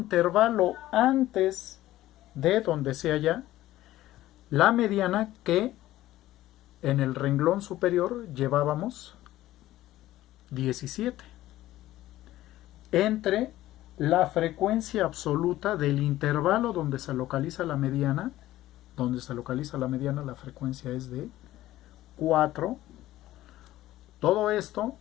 antes de donde se halla la mediana, que en el renglón superior llevábamos 17, entre la frecuencia absoluta del intervalo donde se localiza la mediana. La frecuencia es de 4. Todo esto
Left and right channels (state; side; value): quieter; right; 15.2 dB